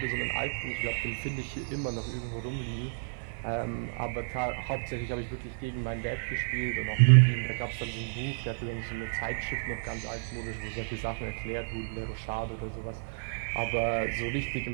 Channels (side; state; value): left; silent; digital silence